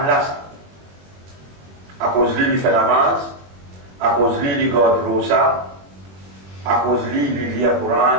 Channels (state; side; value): late; left; 21 ms